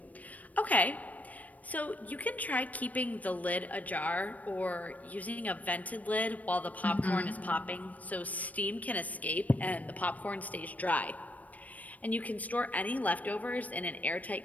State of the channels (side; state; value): right; late; 0.072 ms